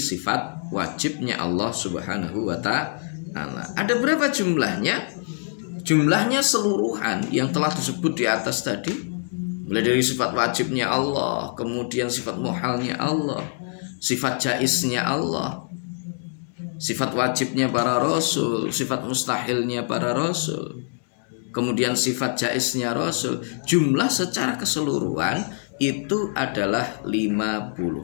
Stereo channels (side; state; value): right; silent; 62 dB below the other